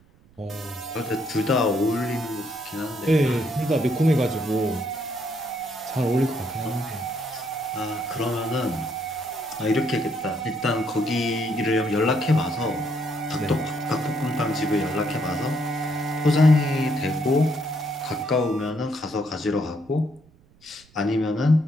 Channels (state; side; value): noise; right; rumble, 29 dB below the sound